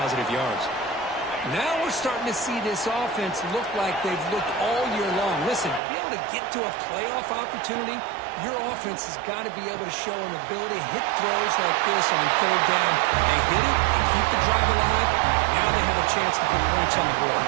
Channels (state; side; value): drops out; left; at 5.8 s